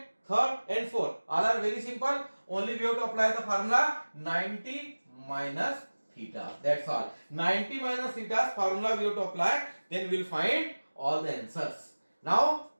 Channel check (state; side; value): inverted; both; correlation -1.00